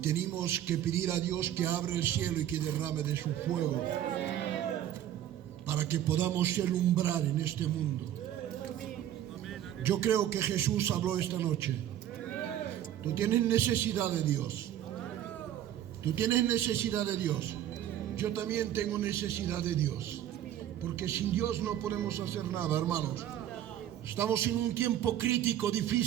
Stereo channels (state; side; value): quieter; left; 11.5 dB